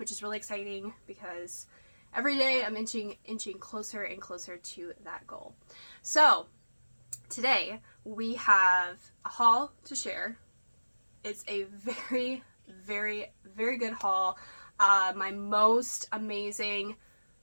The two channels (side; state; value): both; inverted; correlation -1.00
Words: is really exciting because every day I'm inching closer and closer to that goal. So today we have a haul to share. It's a very, very, very good haul. My most amazing,